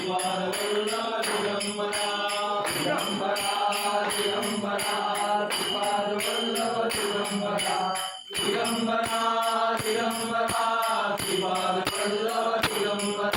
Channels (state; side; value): identical; both; correlation 1.00